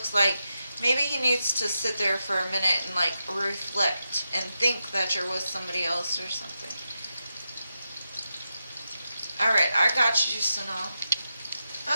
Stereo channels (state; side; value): inverted; both; correlation -0.88